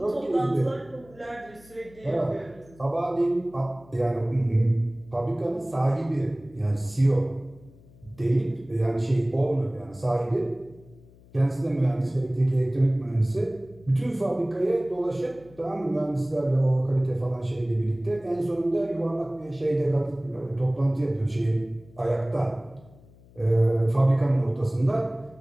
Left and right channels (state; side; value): noise; left; hum, 25 dB below the sound